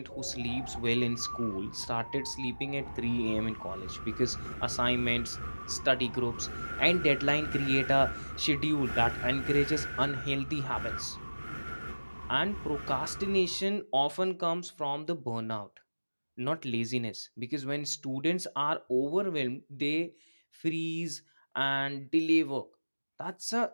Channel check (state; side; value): inverted; both; correlation -1.00